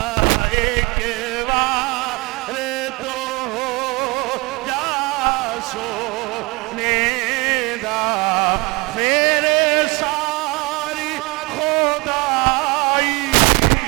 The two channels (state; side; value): quieter; left; 26.0 dB